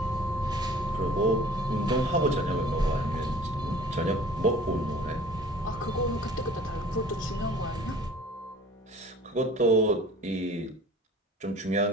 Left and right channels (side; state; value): both; normal; correlation 0.47